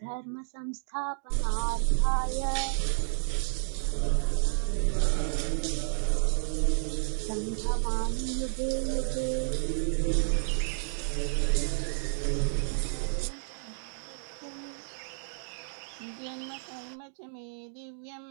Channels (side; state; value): left; silent; digital silence